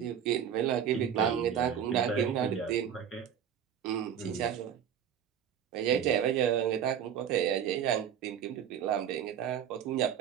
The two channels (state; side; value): quieter; left; 8.8 dB